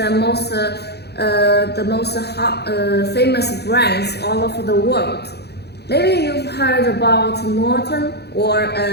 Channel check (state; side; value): late; right; 0.48 ms